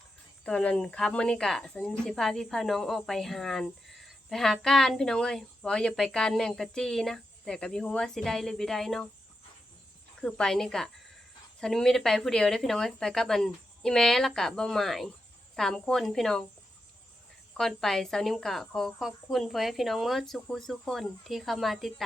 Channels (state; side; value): normal; both; correlation 0.87